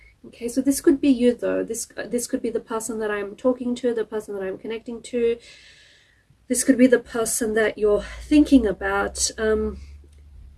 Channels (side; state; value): both; identical; correlation 1.00